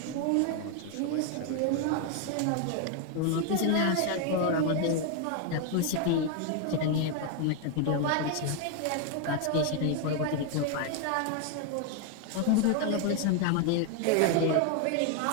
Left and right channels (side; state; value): both; different; correlation 0.01